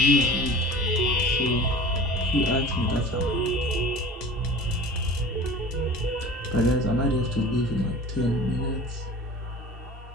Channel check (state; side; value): normal; both; correlation 0.39